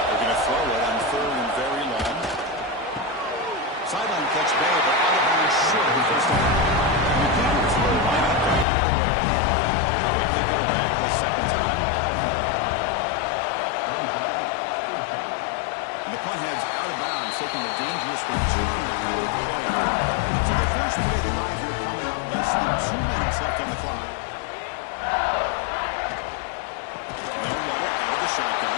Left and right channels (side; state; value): right; drops out; at 8.7 s